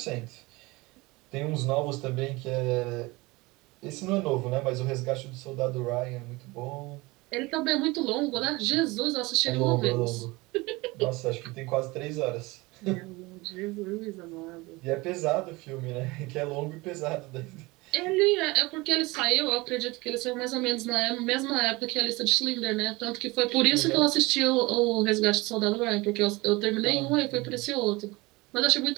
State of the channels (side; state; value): left; quieter; 22.9 dB